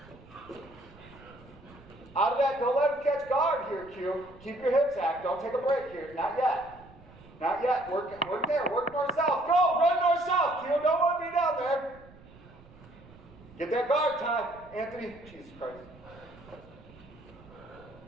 Out of that, don't let him catch guard here, Q. Keep your hips active. Don't take a break here. Not yet. Not yet. Work there. Work north-south. Go, run north-south, Q. Don't want to be down there. Get that guard time, Anthony. Jesus Christ.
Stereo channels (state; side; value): noise; right; rumble, 22 dB below the sound